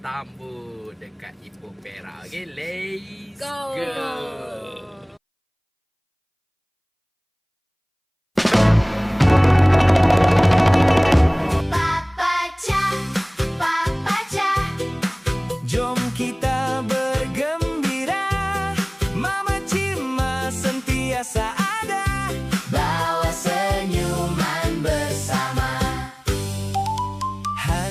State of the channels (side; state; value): both; identical; correlation 1.00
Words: dekat Ipoh Perak. Okay, let's go. Papa Chan, Papa Chan. Jom kita bergembira, Mama Cima sentiasa ada, bawa senyuman bersama.